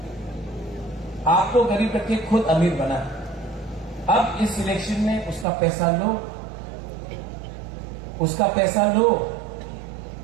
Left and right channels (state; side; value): drops out; left; at 5.5 s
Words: आपको गरीब रखे, खुद अमीर बना। अब इस इलेक्शन में उसका पैसा लो, उसका पैसा लो,